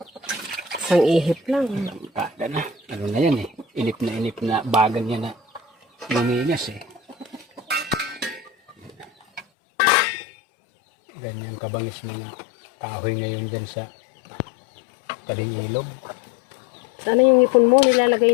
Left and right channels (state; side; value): drops out; right; at 9.5 s